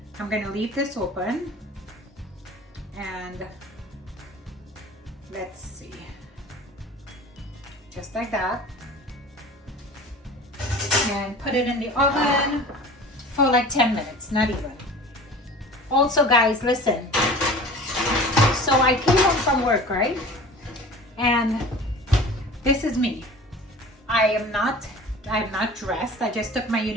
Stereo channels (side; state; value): both; normal; correlation 0.40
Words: I'm gonna leave this open. And let's see. Just like that. And put it in the oven for like 10 minutes, not even. Also, guys, listen. So I came home from work, right? And this is me. I'm not dressed. I just took my